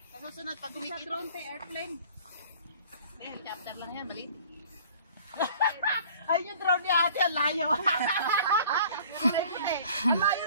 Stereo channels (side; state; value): both; inverted; correlation -0.49